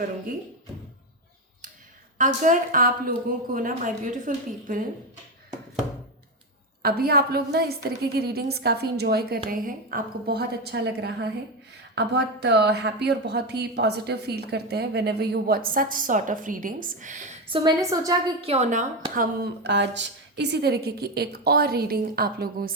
अगर आप लोगों को ना, माय ब्यूटीफुल पीपल, अभी आप लोग ना इस तरीके की रीडिंग्स काफ़ी इंजॉय कर रहे हैं, आपको बहुत अच्छा लग रहा है, आप बहुत हैप्पी और बहुत ही पॉजिटिव फील करते हैं whenever you watch such sort of readings. So मैंने सोचा कि क्यों ना हम आज इसी तरीके की एक और रीडिंग आप लोगों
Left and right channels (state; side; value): normal; both; correlation 0.12